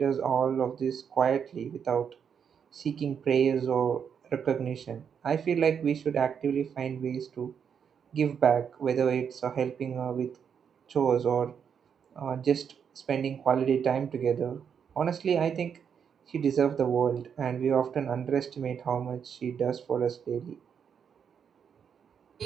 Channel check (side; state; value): left; quieter; 7.4 dB